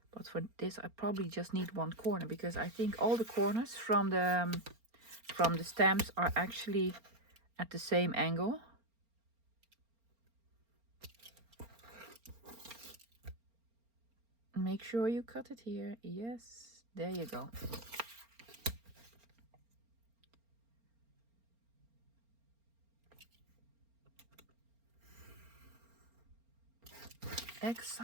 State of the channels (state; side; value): late; left; 4.4 ms